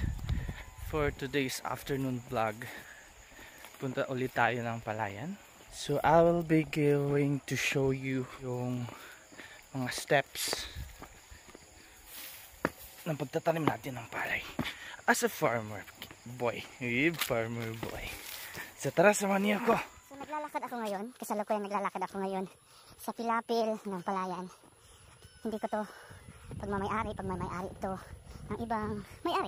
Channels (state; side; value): identical; both; correlation 1.00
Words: for today's afternoon vlog, punta ulit tayo ng Palayan. So I will be going to show you yung mga steps ng pagtatanim natin ng palay as a farmer boy. Farmer boy. So tara, samahan niyo ako. So naglalakad ako ngayon, kasalukuyan naglalakad ako ngayon sa pilapil ng Palayan. Hindi ko to pagmamayari ito ng ibang